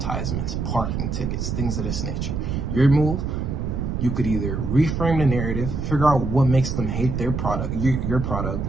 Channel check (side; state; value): right; noise; rumble, 2 dB below the sound